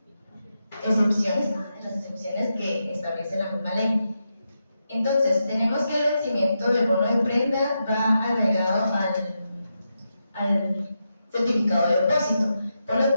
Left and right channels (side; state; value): both; inverted; correlation -0.86